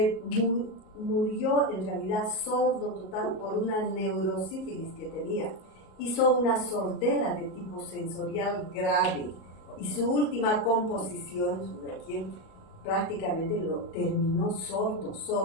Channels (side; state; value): right; late; 37 ms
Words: murió en realidad sordo total por una neurosífilis que tenía. hizo una sordera de tipo sensorial grave y su última composición, su requiem, prácticamente lo terminó